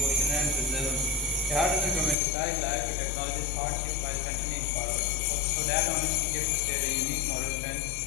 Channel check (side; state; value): right; drops out; at 2.1 s